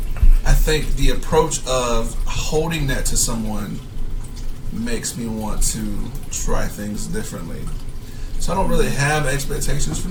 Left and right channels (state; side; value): identical; both; correlation 1.00